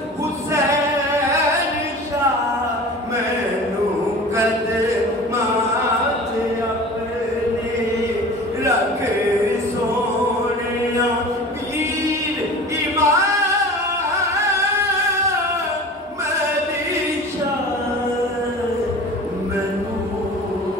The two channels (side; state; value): both; normal; correlation 0.38